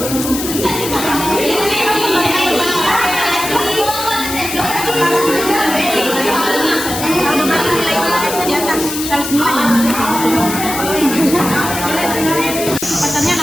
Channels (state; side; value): noise; left; hiss, 6 dB below the sound